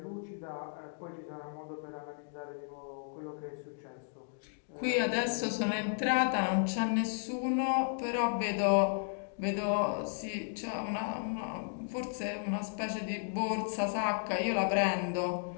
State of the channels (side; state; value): right; silent; digital silence